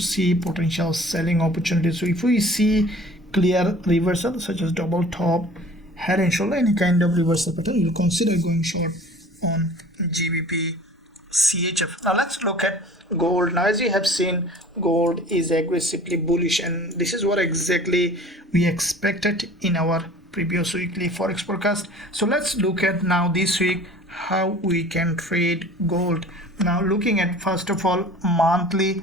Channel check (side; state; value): both; normal; correlation 0.46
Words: potential selling opportunities. So if we see clear reversal such as double top, head and shoulder, any kind of reversal pattern, we'll consider going short on GBPCHF. Now let's look at gold. Now as you have seen, gold is aggressively bullish, and this is what exactly we expected in our previous weekly forex forecast. So let's look at now this week how we can trade gold. Now looking at first of all monthly.